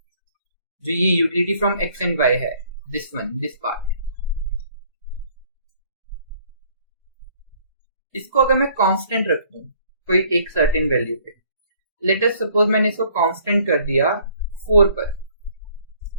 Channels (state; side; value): inverted; both; correlation -0.59